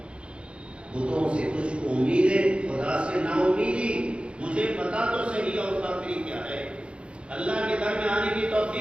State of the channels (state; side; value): late; left; 0.058 ms